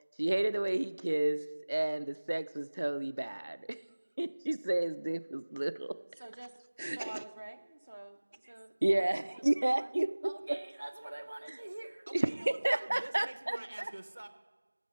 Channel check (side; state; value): both; inverted; correlation -1.00